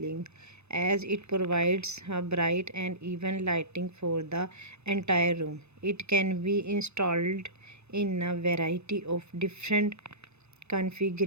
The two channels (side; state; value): left; late; 0.81 ms